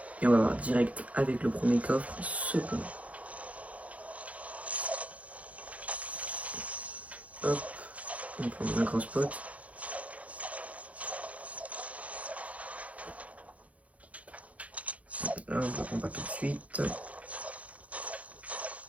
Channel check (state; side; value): late; left; 0.067 ms